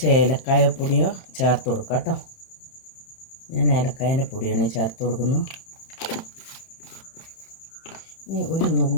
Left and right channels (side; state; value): right; late; 31 ms